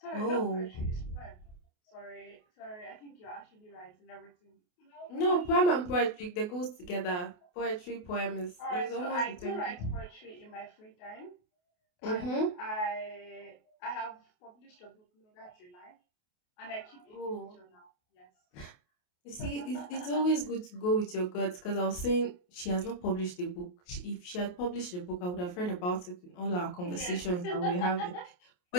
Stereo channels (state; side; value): late; right; 28 ms